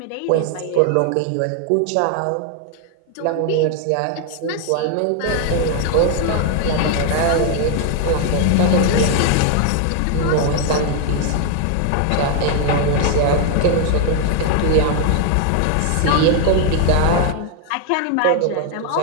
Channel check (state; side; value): different; both; correlation 0.00